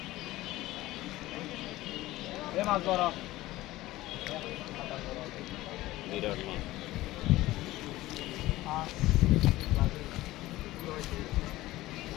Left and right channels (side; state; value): right; quieter; 17.3 dB